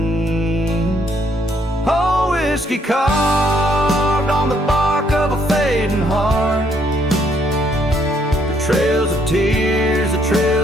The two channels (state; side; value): normal; both; correlation 0.69